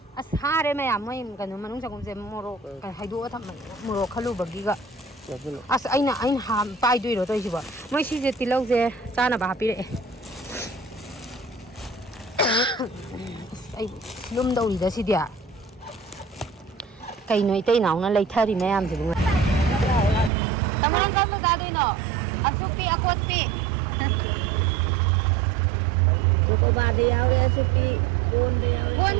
अस हारे मैम मोय कनो मनुंग चगुमसे मोरोक हाइदो थम मोरोक खलुबगीगा अस अइना हाम पाइदोइरो तोइसिबो मोय सिजे तिलौजे चानाबा हापिरे लुम दौरीदा सिदिया कइनो इतै नाउना लैथारि मयामसिबु तमान काम दादोइनो असुपी अकोती को बादे यावरे असुपी कोन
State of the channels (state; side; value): drops out; left; at 20.3 s